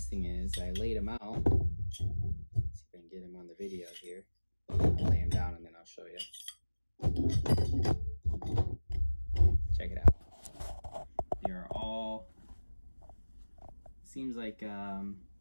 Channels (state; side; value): inverted; both; correlation -1.00